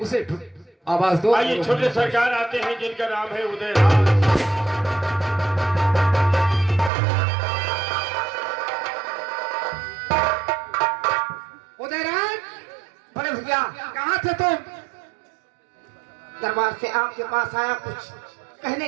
उसे आवाज दो। आइए, छोटे सरकार आते हैं जिनका नाम है उदयराज। उदयराज, बड़े भैया, कहाँ थे तुम? दरबार से आपके पास आया कुछ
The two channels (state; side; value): drops out; left; at 6.9 s